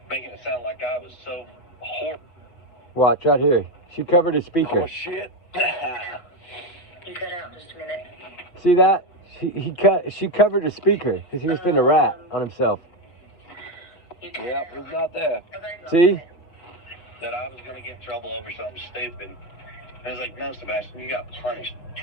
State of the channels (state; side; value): late; right; 6.2 ms